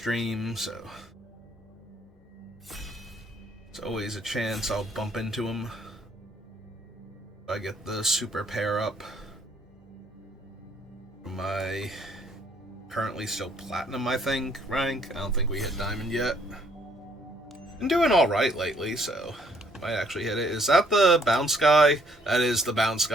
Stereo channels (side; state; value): both; normal; correlation 0.66